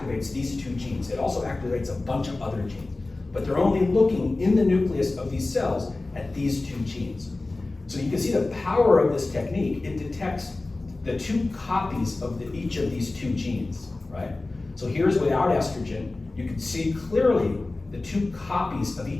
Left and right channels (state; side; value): quieter; right; 3.1 dB